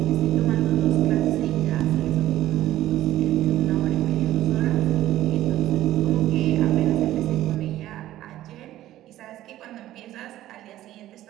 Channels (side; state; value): left; quieter; 14.1 dB